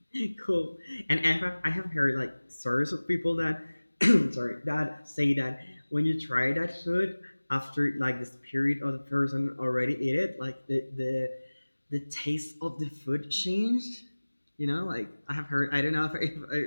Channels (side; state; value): both; inverted; correlation -1.00